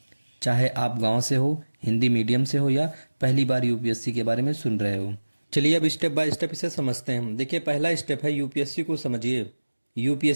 चाहे आप गांव से हो, हिंदी मीडियम से हो या पहली बार यूपीएससी के बारे में सुन रहे हो। चलिए अब स्टेप बाय स्टेप इसे समझते हैं। देखिए, पहला स्टेप है यूपीएससी को समझिए।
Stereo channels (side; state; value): both; inverted; correlation -1.00